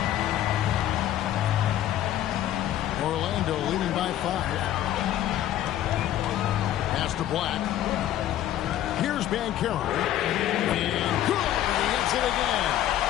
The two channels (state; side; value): quieter; right; 12.3 dB